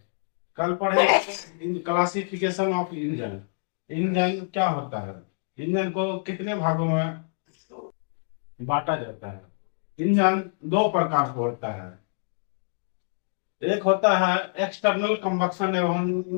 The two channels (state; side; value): silent; right; digital silence